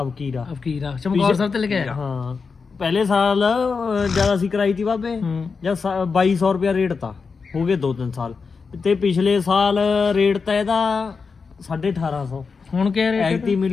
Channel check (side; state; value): right; quieter; 5.1 dB